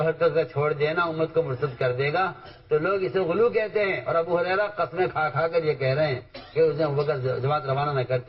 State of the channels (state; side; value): identical; both; correlation 1.00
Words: حرکت کا چھوڑ دینا امت کو مرتد کر دے گا تو لوگ اسے غلو کہتے ہیں. اور ابو ہریرہ قسمیں کھا کھا کر یہ کہہ رہے ہیں کہ اس نے ابوبکر جماعت روانہ نہ